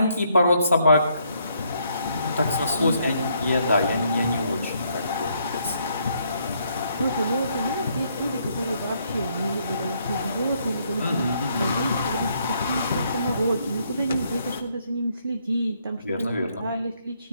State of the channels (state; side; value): inverted; both; correlation -0.72